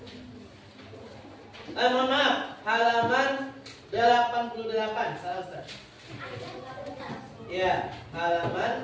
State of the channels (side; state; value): both; identical; correlation 1.00